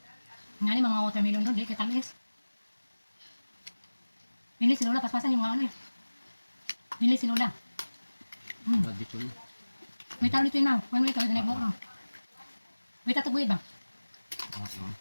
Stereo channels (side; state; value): both; inverted; correlation -1.00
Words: Nga ni mga watermelon doon, di kay tamis. Bili si Lola, paspasan yung mga ano eh. Bili si Lola. Nagdito na. May taro dito yun na. One week, kami nag-book na. May tataguyid ba? Oo.